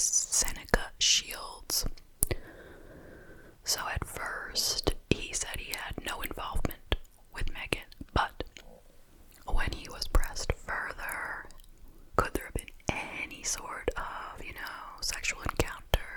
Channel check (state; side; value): identical; both; correlation 1.00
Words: Shields. So at first, he said he had no involvement with Maegan, but when he was pressed further, could there have been any sort of, sexual